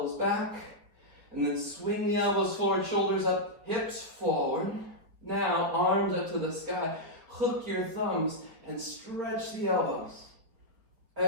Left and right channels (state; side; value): late; left; 4.6 ms